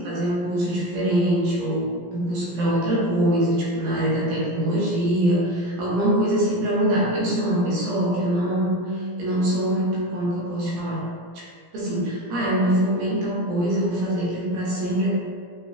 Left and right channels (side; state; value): left; late; 17 ms